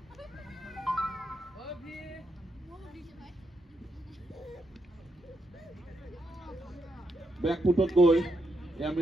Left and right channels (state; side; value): normal; both; correlation 0.82